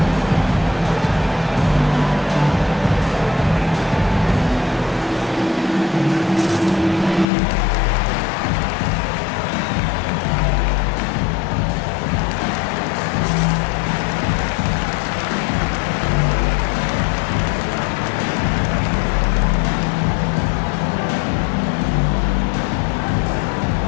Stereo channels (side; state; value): right; drops out; at 7.2 s